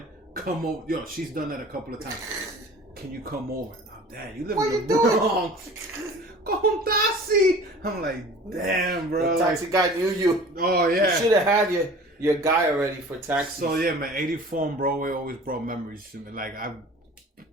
Come over. Yo, she's done that a couple of times. Can you come over? Oh, damn, you live in the Bronx. Con taxi. I'm like, damn, bro. The taxi guy knew you. Oh, yeah. You should have had your guy already for taxi. So, yeah, man, 84 on Broadway always brought memories to me. Like, I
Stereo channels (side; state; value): both; normal; correlation 0.43